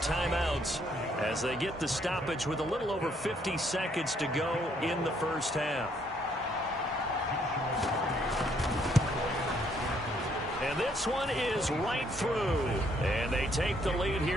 as they get the stoppage with a little over 50 seconds to go in the first half. And this one is right through. And they take the lead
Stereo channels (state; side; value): normal; both; correlation 0.69